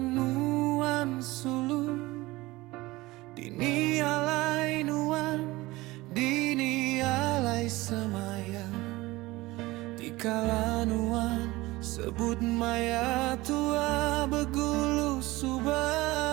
nuan sulu. Dini alai nuan, dini alai semayang. Dikala nuan sebut maya tua begulu subah.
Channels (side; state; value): left; quieter; 20.0 dB